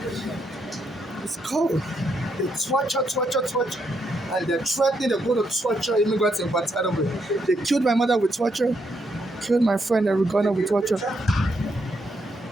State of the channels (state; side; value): normal; both; correlation 0.78